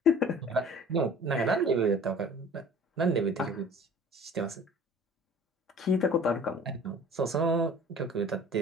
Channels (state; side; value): normal; both; correlation 0.47